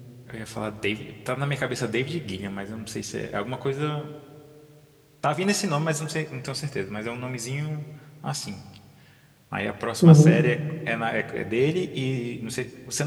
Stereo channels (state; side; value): identical; both; correlation 1.00